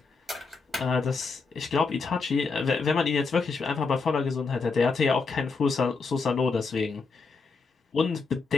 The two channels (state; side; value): quieter; right; 4.5 dB